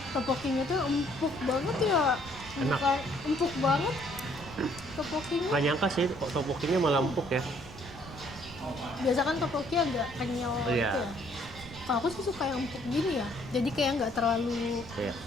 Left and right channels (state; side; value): noise; right; rumble, 16 dB below the sound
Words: Tteokbokkinya tuh empuk banget ya. Enak. Bukan empuk banget, Topokinya Nggak nyangka sih kok topokinya malah empuk ya. biasa kan topoki agak kenyal Iya. gitu ya. Kalau aku sih suka yang empuk gini ya. Jadi kayak nggak terlalu Iya,